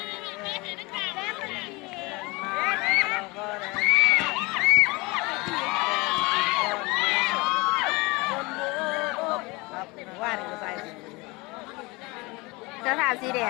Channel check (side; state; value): right; quieter; 24.7 dB